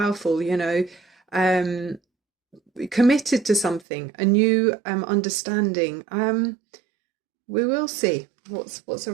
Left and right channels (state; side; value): drops out; left; at 3.9 s